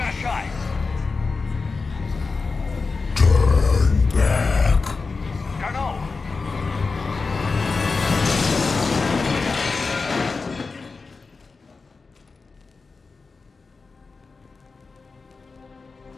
a shot! Turn back! Garneau!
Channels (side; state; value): right; quieter; 4.3 dB